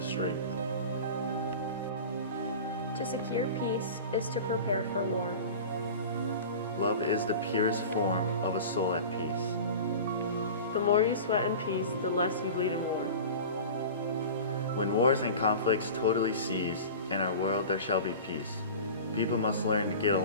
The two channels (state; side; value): inverted; both; correlation -0.35